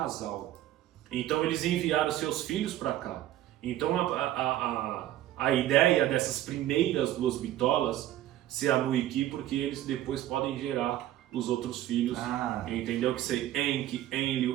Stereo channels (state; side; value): quieter; left; 13.5 dB